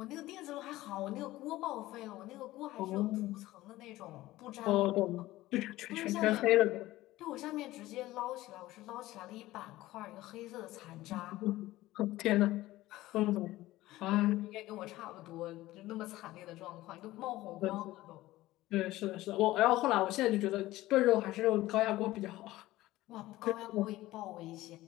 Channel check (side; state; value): right; quieter; 16.9 dB